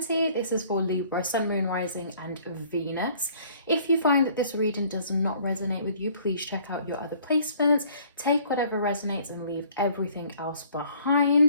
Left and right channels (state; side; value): inverted; both; correlation -0.57